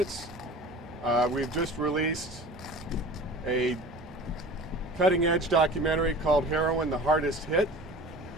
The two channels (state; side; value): normal; both; correlation 0.41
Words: We've just released a cutting-edge documentary called Heroin, the Hardest Hit,